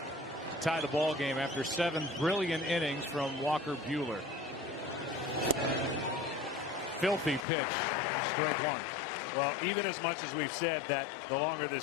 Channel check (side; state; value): right; drops out; at 7.5 s